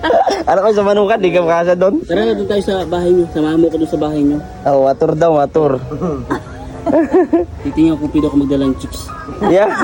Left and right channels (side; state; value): both; identical; correlation 1.00